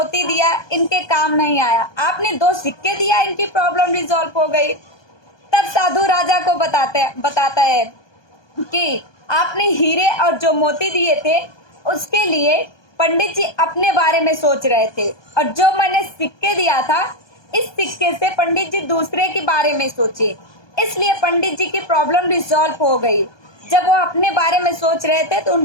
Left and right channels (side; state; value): right; late; 1.2 ms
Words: दिया, इनके काम नहीं आया, आपने 2 सिक्के दिया, इनकी प्रॉब्लम रिजॉल्व हो गई। तब साधु राजा को बताता है कि आपने हीरे और जो मोती दिए थे उसके लिए पंडित जी अपने बारे में सोच रहे थे, और जो मैंने सिक्के दिया था इस सिक्के से पंडित जी दूसरे के बारे में सोचे, इसलिए पंडित जी की प्रॉब्लम रिजॉल्व हो गई। जब वो अपने बारे में सोच रहे थे तो